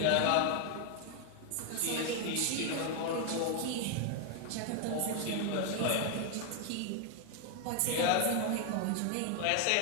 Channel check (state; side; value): different; both; correlation 0.01